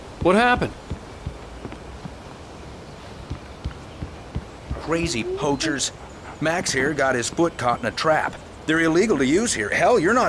What happened? Crazy poachers. Max here got his foot caught in a trap. They're illegal to use here. Hell, you're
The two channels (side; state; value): both; identical; correlation 1.00